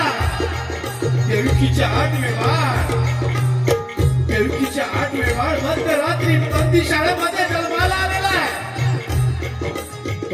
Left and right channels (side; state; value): both; identical; correlation 1.00